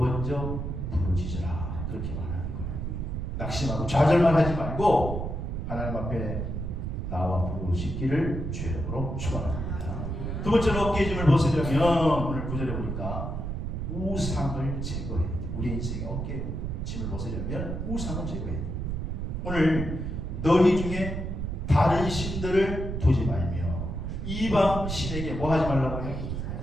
부르짖으라 그렇게 말하는 거예요. 낙심하고 좌절만 하지 말고 하나님 앞에 나와 부르짖기를 주의 이름으로 축원합니다. 두 번째로 어깨에 짐을 벗으려면 오늘 9절에 보니까 우상을 제거해야 돼요. 우리 인생의 어깨에 짐을 벗으려면 우상을 제거해야 돼요. 오늘 너희 중에 다른 신들을 두지 말며 이방 신에게 뭐 하지 말라고요?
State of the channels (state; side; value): noise; right; rumble, 4 dB below the sound